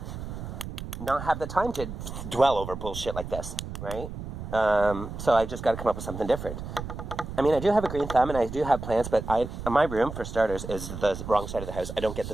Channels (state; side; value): noise; right; rumble, 8 dB below the sound